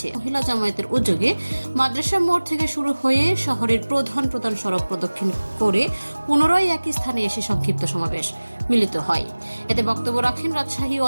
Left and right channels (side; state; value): both; inverted; correlation -1.00